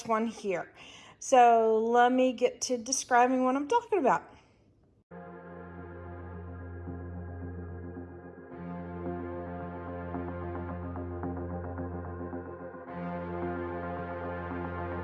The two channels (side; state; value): both; identical; correlation 1.00